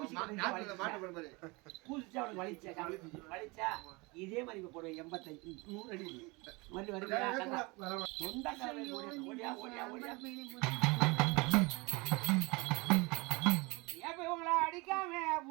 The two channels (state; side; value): quieter; left; 26.1 dB